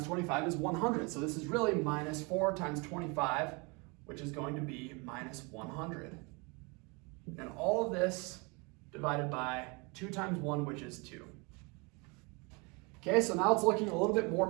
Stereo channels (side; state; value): left; quieter; 29.7 dB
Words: 25 is 100. So this is really -4 times 25, which is going to be -100. And all of this divided by 2 times 1, which is 2. Okay, so now it's looking a little bit more